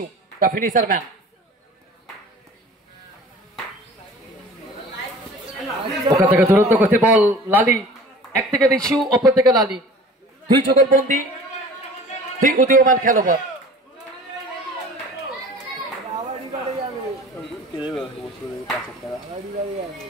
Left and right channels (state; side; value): normal; both; correlation 0.44